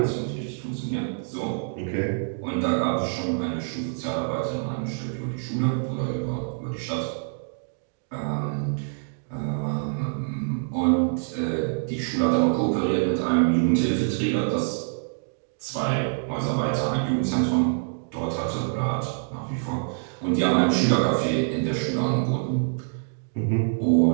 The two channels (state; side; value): silent; left; digital silence